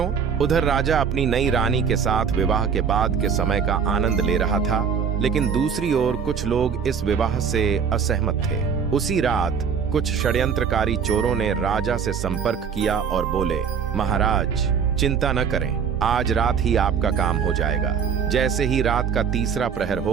उधर राजा अपनी नई रानी के साथ विवाह के बाद के समय का आनंद ले रहा था, लेकिन दूसरी ओर कुछ लोग इस विवाह से असहमत थे। उसी रात कुछ षड्यंत्रकारी चोरों ने राजा से संपर्क किया और बोले, महाराज चिंता न करें, आज रात ही आपका काम हो जाएगा। जैसे ही रात का तीसरा प्रहर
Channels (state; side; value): quieter; left; 6.9 dB